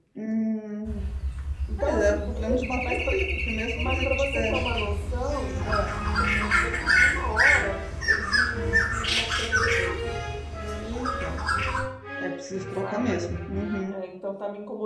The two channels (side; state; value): both; identical; correlation 1.00